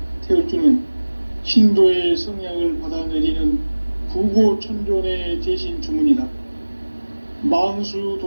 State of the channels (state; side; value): inverted; both; correlation -1.00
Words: 태울주는 신도의 성향을 받아내리는 부고천존의 대신 주문이다. 만수